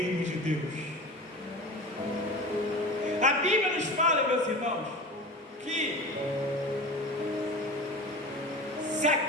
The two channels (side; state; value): both; normal; correlation 0.32